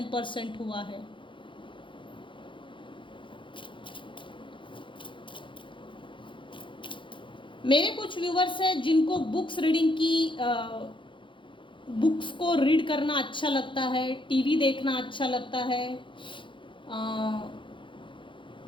हुआ है। मेरे कुछ व्यूअर्स हैं जिनको बुक्स रीडिंग की बुक्स को रीड करना अच्छा लगता है, टीवी देखना अच्छा लगता है,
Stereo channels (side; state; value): right; late; 0.24 ms